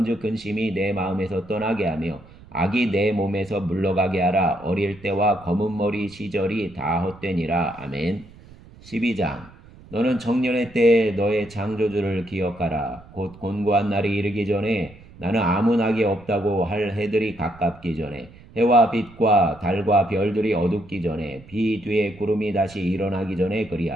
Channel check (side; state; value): right; noise; rumble, 22 dB below the sound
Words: 근심이 내 마음에서 떠나게 하며 악이 내 몸에서 물러가게 하라. 어릴 때와 검은 머리 시절이 다 헛되니라. 아멘. 12장. 너는 청년의 때에 너의 창조주를 기억하라. 곧 곤고한 날이 이르기 전에 나는 아무 낙이 없다고 할 해들이 가깝기 전에 해와 빛과 달과 별들이 어둡기 전에 비 뒤에 구름이 다시 일어나기 전에